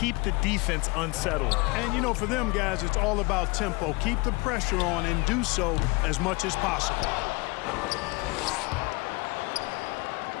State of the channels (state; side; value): quieter; right; 26.6 dB